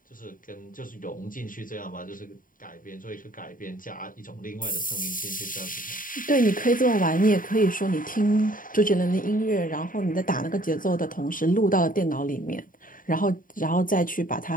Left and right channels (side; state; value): right; late; 0.40 ms